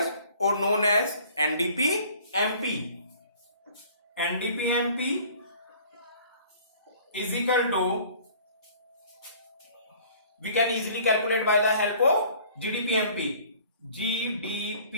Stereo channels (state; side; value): inverted; both; correlation -0.52